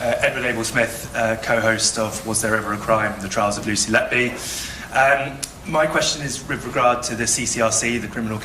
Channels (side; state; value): both; identical; correlation 1.00